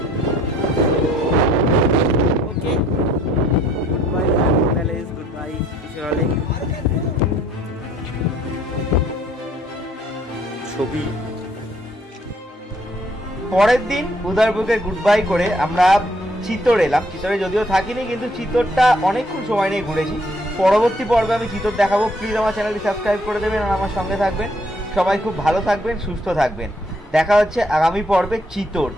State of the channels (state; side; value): normal; both; correlation 0.64